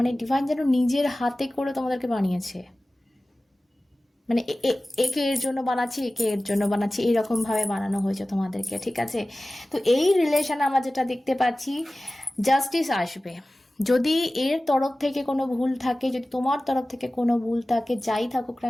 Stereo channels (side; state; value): both; normal; correlation 0.97